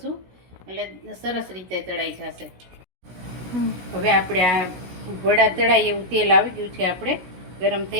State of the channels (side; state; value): left; late; 16 ms